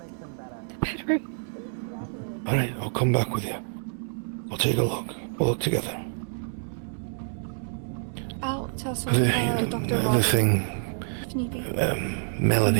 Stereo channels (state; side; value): silent; left; digital silence